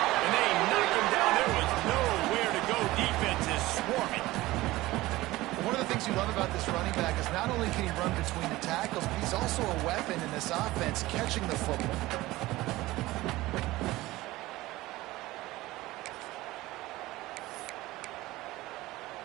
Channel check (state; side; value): quieter; left; 18.3 dB